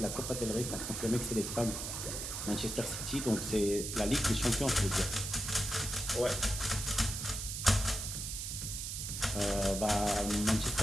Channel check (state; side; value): noise; right; hiss, 5 dB below the sound